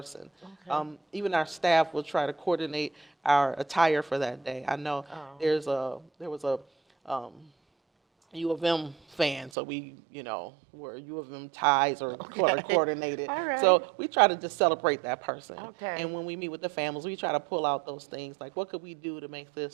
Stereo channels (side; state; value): left; drops out; at 9.5 s